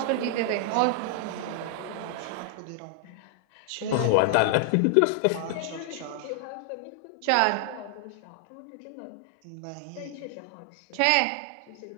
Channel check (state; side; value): different; both; correlation 0.00